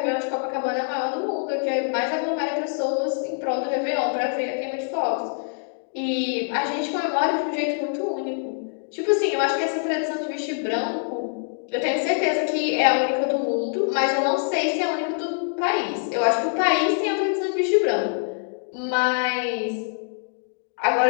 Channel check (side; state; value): right; silent; 62 dB below the other